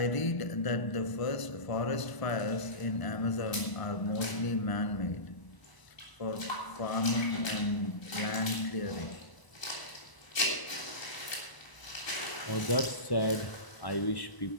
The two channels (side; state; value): right; late; 1.0 ms